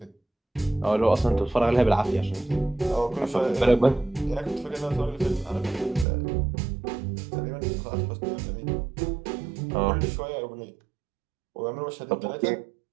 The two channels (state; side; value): drops out; left; at 6.1 s